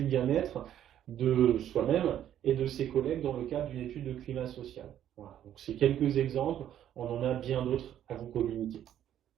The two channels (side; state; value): left; quieter; 10.9 dB